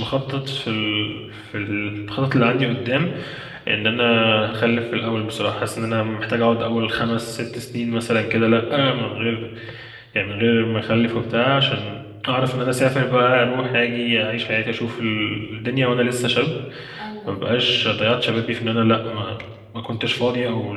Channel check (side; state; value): both; identical; correlation 1.00